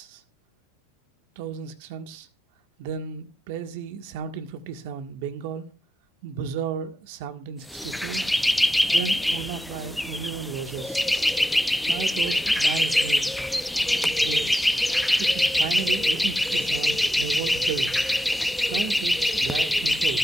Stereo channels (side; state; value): both; normal; correlation 0.87